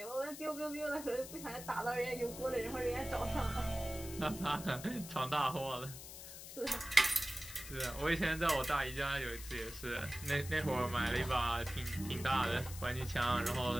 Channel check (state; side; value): noise; left; hiss, 12 dB below the sound